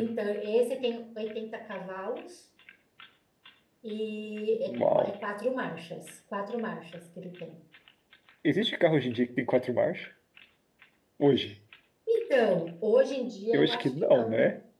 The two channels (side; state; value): both; identical; correlation 1.00